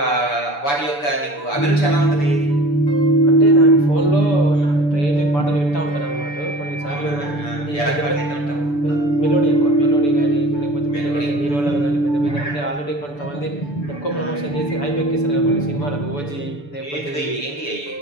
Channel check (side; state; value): right; late; 6.9 ms